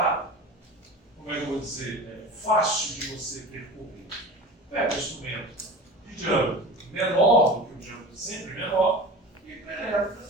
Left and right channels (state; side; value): normal; both; correlation 0.34